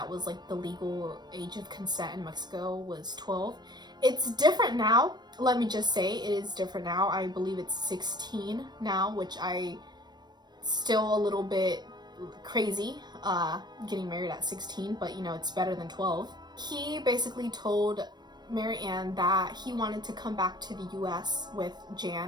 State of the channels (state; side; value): late; left; 0.21 ms